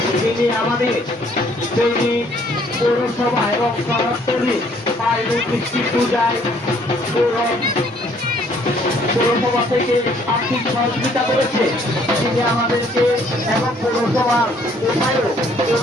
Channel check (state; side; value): normal; both; correlation 0.63